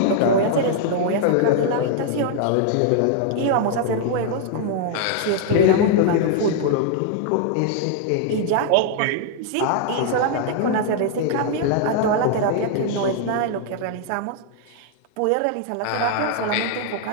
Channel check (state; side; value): different; both; correlation 0.00